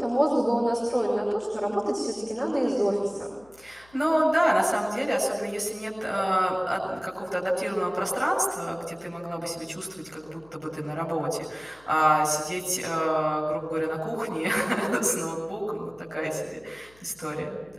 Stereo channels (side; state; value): left; noise; hum, 28 dB below the sound